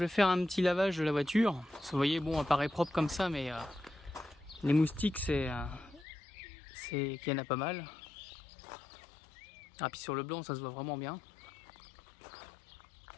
vais faire un petit lavage de la voiture. Vous voyez, bon, elle paraît propre comme ça, mais les moustiques, qu'il y en a pas mal. Ah, puis sur le blanc, ça se voit vraiment bien.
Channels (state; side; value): drops out; right; at 6.1 s